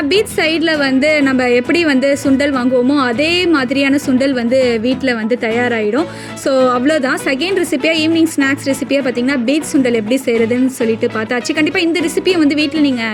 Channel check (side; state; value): both; identical; correlation 1.00